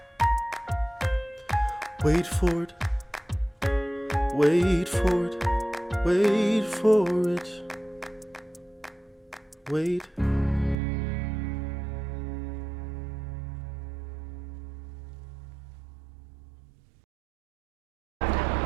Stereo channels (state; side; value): drops out; left; at 10.8 s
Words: wait for it, wait for it, wait for it, wait.